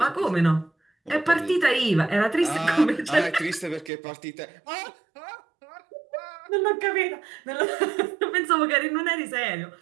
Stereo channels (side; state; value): left; drops out; at 3.9 s